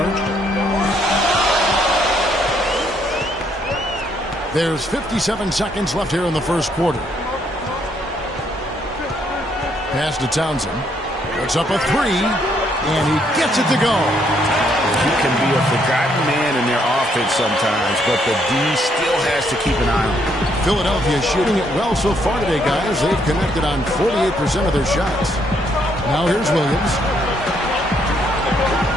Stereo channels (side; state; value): both; normal; correlation 0.71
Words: There's 57 seconds left here in the first quarter. Pass to Townsend. Puts up a 3, and he gets it to go. He can be a forgotten man in their offense sometimes, but the D still has to keep an eye on him. Philadelphia shooting it well so far today, guys. They've connected on 48% of their shots. Now here's Williams.